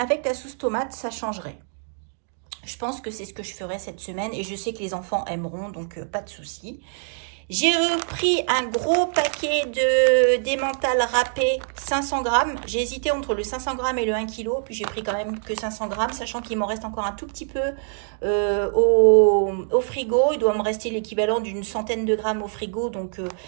la sauce tomate ça changerait. Je pense que c'est ce que je ferai cette semaine et je sais que les enfants aimeront donc pas de souci. J'ai repris un gros paquet d'emmental râpé 500 grammes. J'ai hésité entre le 500 grammes et le 1 kg. Puis j'ai pris quand même que 500 grammes, sachant qu'il m'en reste encore un tout petit peu au frigo. Il doit me rester l'équivalent d'une centaine de grammes au frigo. Donc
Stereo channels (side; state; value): left; silent; digital silence